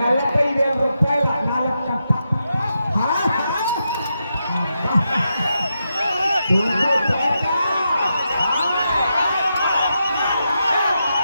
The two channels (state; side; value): inverted; both; correlation -0.85